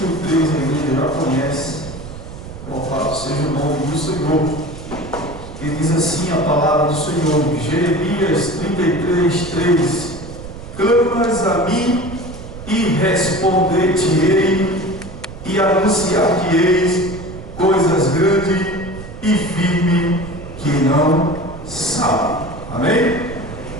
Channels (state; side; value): noise; right; rumble, 12 dB below the sound